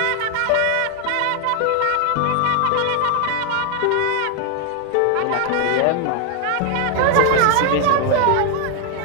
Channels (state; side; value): different; both; correlation 0.01